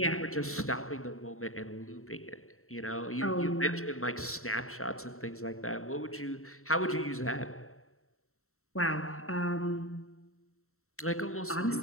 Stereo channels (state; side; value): late; right; 0.63 ms